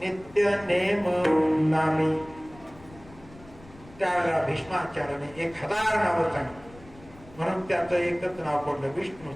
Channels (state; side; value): noise; left; rumble, 22 dB below the sound